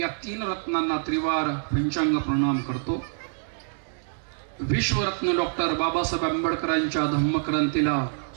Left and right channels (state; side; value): silent; left; digital silence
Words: तीन रत्नांना त्रिवार पंचांग प्रणाम करतो। विश्वरत्न डॉक्टर बाबासाहेब आंबेडकरांच्या धम्मक्रांतीला